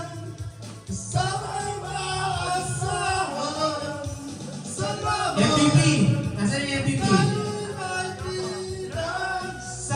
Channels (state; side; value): identical; both; correlation 1.00